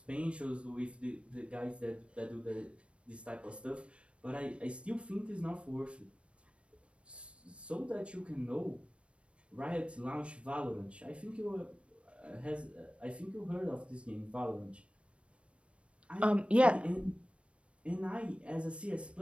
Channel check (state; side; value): late; left; 0.060 ms